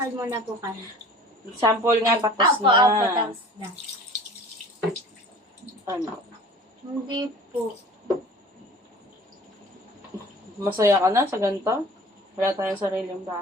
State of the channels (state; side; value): normal; both; correlation 0.44